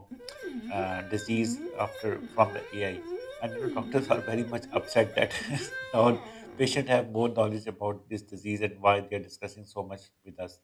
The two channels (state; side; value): identical; both; correlation 1.00